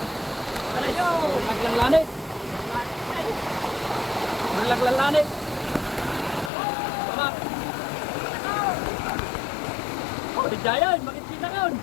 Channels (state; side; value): drops out; right; at 6.5 s